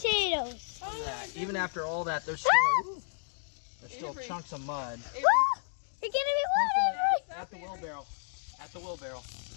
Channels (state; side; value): silent; right; 57 dB below the other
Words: Even after all that, there's still Avery. chunks of mud. You're getting me water. At the wheelbarrow. At the wheelbarrow.